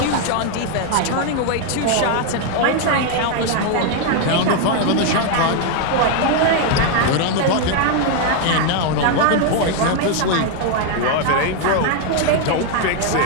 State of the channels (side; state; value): both; different; correlation 0.00